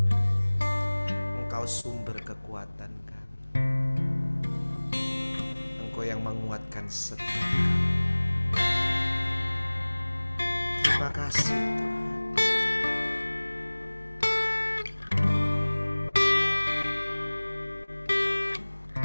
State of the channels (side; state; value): both; inverted; correlation -1.00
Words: Engkau sumber kekuatan kami. Engkau yang menguatkan setiap kami. Terima kasih Tuhan.